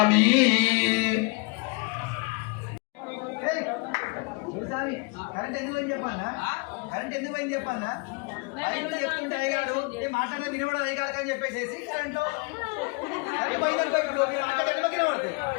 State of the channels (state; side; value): quieter; right; 28.9 dB